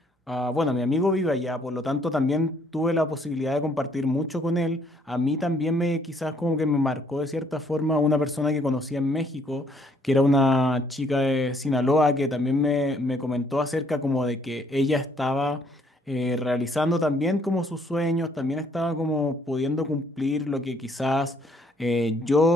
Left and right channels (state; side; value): normal; both; correlation 0.65